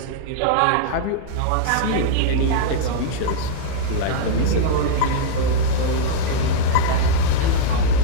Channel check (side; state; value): both; different; correlation -0.02